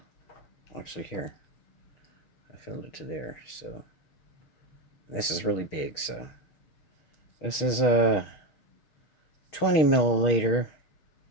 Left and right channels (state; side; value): late; right; 6.4 ms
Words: Actually, here. I filled it to there, so this is really big, so this is a 20 milliliter,